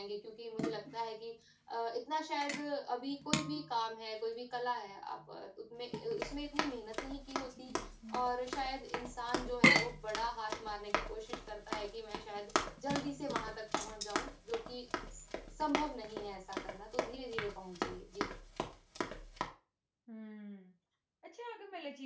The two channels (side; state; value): both; identical; correlation 1.00